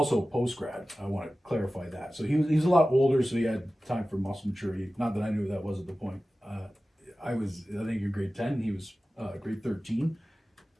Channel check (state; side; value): normal; both; correlation 0.95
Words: post-grad. I want to clarify that. So he was a lot older, so he had time for muscle maturity. Not that I knew that wasn't the point. I think you're grade 10, he was grade 13.